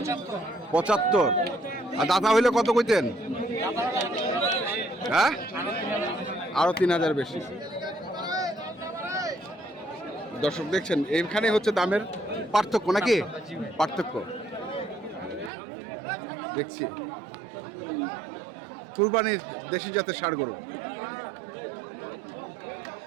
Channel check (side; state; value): left; drops out; at 15.5 s